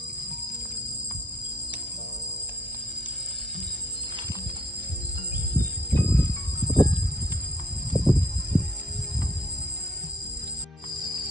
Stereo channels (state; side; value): normal; both; correlation 0.50